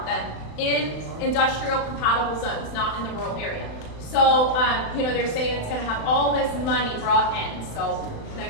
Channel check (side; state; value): right; late; 35 ms